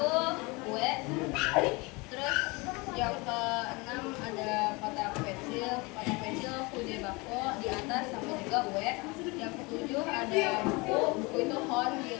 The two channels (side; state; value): right; quieter; 26.1 dB